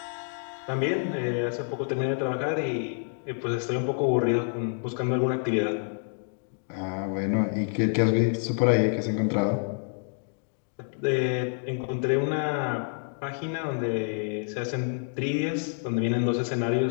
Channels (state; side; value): silent; right; 59 dB below the other